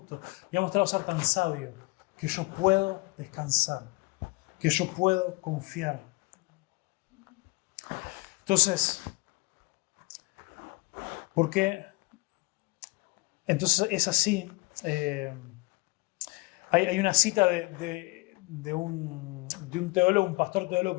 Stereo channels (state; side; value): quieter; right; 24.9 dB